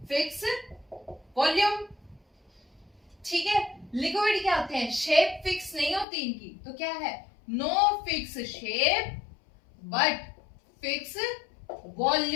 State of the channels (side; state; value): right; drops out; at 6.1 s